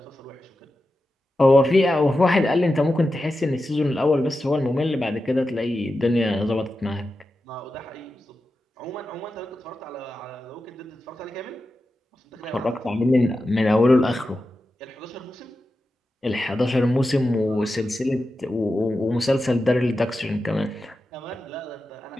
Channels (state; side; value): normal; both; correlation 0.91